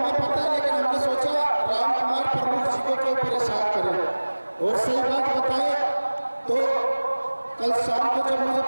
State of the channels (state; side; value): inverted; both; correlation -1.00